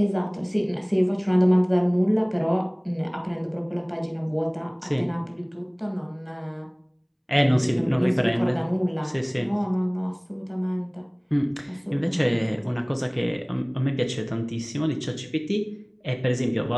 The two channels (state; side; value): identical; both; correlation 1.00